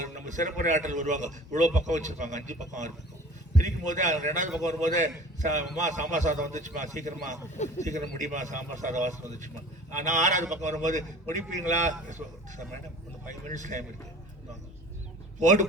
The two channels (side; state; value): both; normal; correlation 0.44